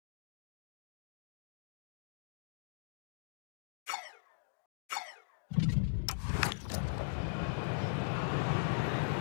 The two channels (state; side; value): silent; right; digital silence